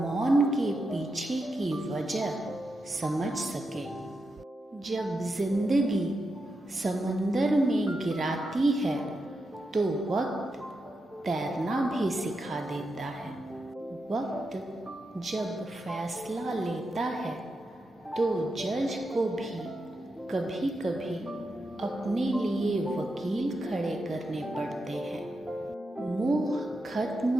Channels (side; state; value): both; normal; correlation 0.86